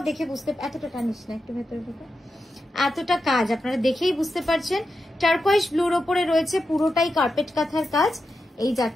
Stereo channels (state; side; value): normal; both; correlation 0.89